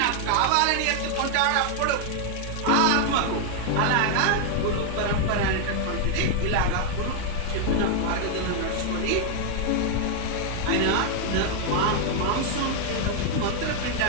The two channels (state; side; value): different; both; correlation 0.00